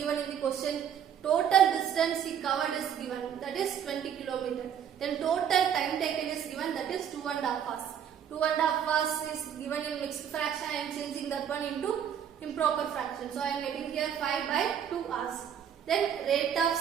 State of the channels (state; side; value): quieter; left; 8.8 dB